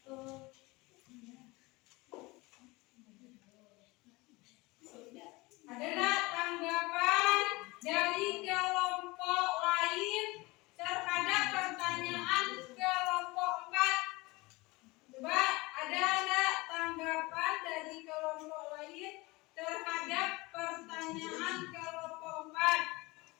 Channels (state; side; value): quieter; right; 23.1 dB